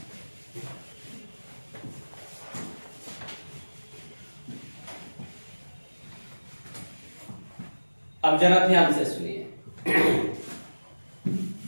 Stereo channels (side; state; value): both; inverted; correlation -1.00